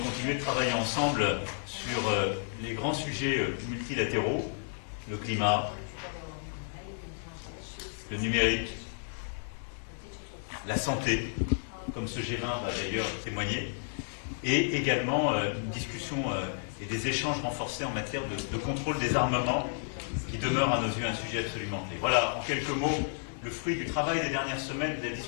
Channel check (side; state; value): right; silent; digital silence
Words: continuer de travailler ensemble sur les grands sujets multilatéraux, le climat, le numérique, la santé, comme ce G20 va d'ailleurs témoigner, et également une discussion et des échanges renforcés en matière de contrôle des armements, qui demeure à nos yeux un sujet absolument clé. Voilà, en quelques mots, le fruit du travail des dernières semaines, des